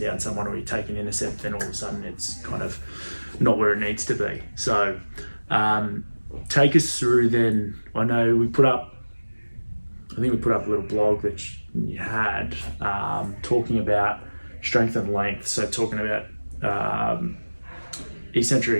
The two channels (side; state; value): both; inverted; correlation -1.00